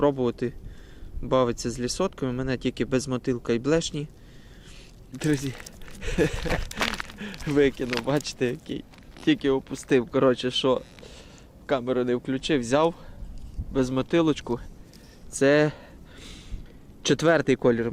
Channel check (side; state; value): both; identical; correlation 1.00